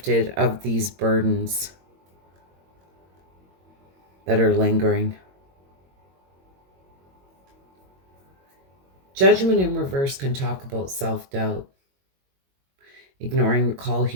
of these burdens that are lingering. Judgment in reverse can talk about self-doubt. Ignoring the call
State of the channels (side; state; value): left; late; 22 ms